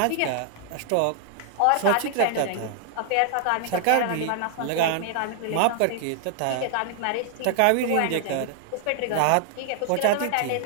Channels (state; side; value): different; both; correlation 0.00